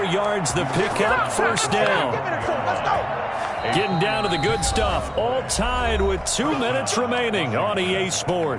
yards the pickup, first down. Getting down to the good stuff, all tied with 2 minutes remaining on EA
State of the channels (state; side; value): identical; both; correlation 1.00